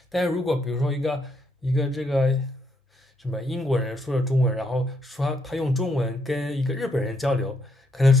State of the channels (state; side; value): normal; both; correlation 0.75